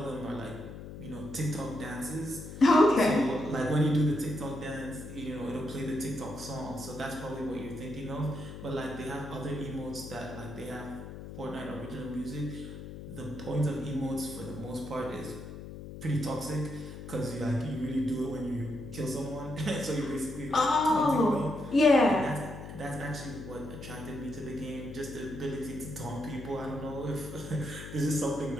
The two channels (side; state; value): left; noise; hum, 11 dB below the sound